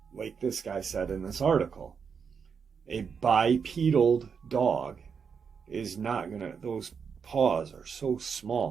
like this guy said in this article, a bipedal dog is not gonna, those paws are so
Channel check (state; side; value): quieter; left; 6.3 dB